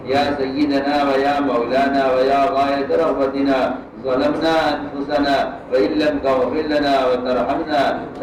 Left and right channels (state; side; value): identical; both; correlation 1.00